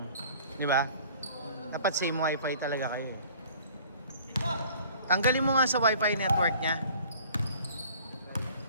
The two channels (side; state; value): both; inverted; correlation -0.50